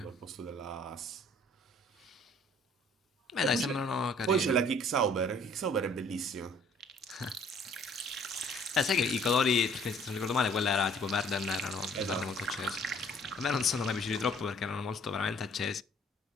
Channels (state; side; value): normal; both; correlation 0.57